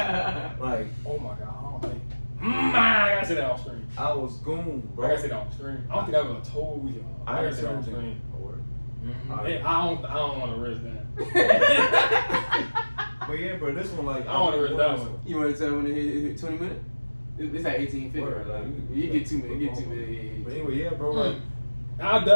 Like, Oh my god. I don't think. I gotta say that off screen. I was Goon, I bro. gotta say that off screen. I don't think I would have told you. I gotta heard say that off something. screen. Oh, word. Hey, I don't want to risk that. But yeah, bro, this one like I don't want to risk that one. You want to tell when it hit 20 minutes? It's at 18:50. Word, Right? like, You get 2 minutes. You get 2 minutes. But anyway, yeah, bro, like I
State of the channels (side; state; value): both; inverted; correlation -1.00